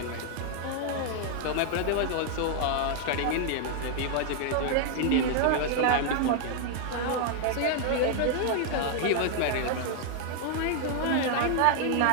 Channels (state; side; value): different; both; correlation 0.00